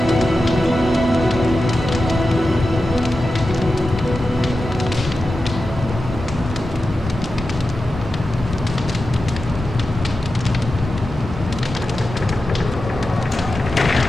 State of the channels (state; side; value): normal; both; correlation 0.92